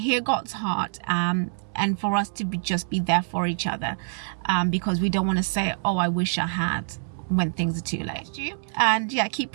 God's heart, and for us to just be there for each other, because we don't want to say, oh, I wish I had, when things are too late. And yeah, keep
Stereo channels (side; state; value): left; silent; digital silence